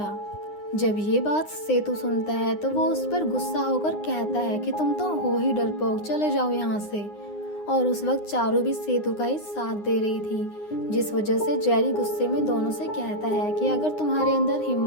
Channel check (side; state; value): right; late; 9.7 ms